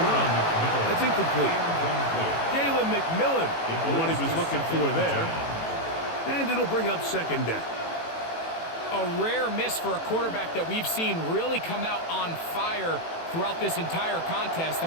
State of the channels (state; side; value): late; right; 18 ms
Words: on. That's incomplete. Jalen McMillan, the one he was looking for there. And it'll bring up 2nd down. A rare miss for a quarterback that we've seen really come out on fire throughout this entire contest. I